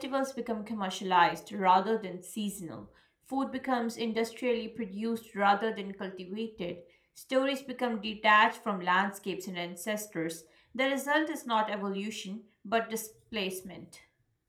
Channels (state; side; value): identical; both; correlation 1.00